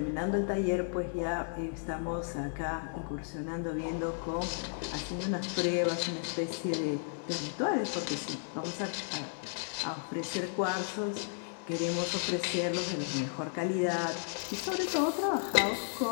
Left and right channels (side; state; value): right; silent; 55 dB below the other